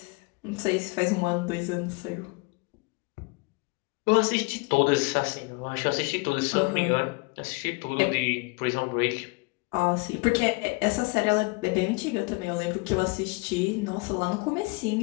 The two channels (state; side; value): quieter; right; 28.1 dB